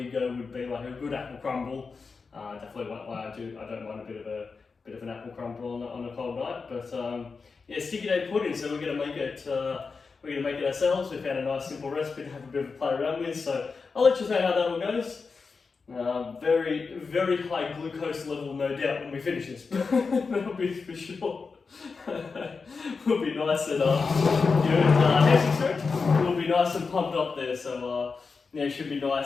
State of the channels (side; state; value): right; quieter; 4.8 dB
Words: go would be like a good apple crumble. Definitely won't lie, I don't mind a bit of an apple crumble on a cold night. But sticky date pudding. So we're gonna make it. We're going to make it ourselves. We found a nice simple recipe to have a bit of a play around with, so I'll let you know how that all goes. Very, very high glucose level, no doubt, when we finish this. That'll be for sure. We'll be nice and we'll be nice and pumped up there, so it should be